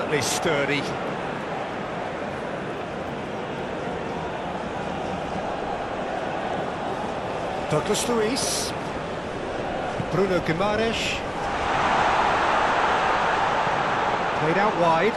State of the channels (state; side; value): identical; both; correlation 1.00